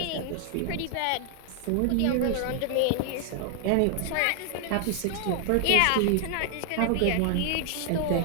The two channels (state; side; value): different; both; correlation 0.00